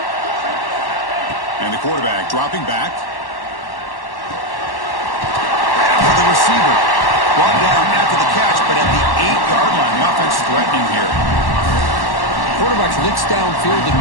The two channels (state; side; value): late; right; 1.1 ms